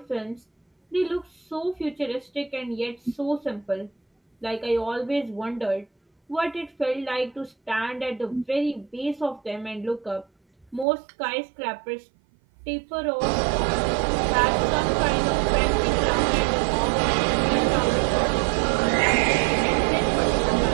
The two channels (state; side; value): drops out; left; at 10.9 s